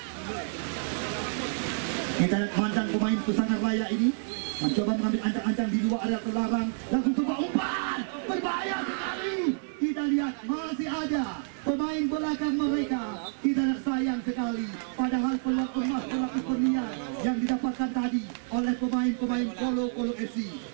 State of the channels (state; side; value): silent; left; digital silence